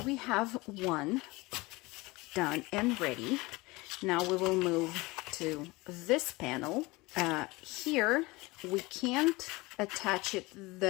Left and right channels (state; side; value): quieter; right; 22.6 dB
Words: we have one done and ready. Now we will move to this panel. Here we can't attach it